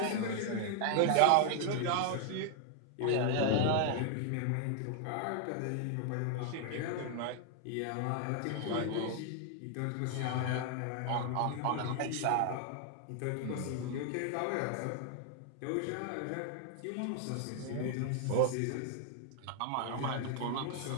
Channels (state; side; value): different; both; correlation 0.00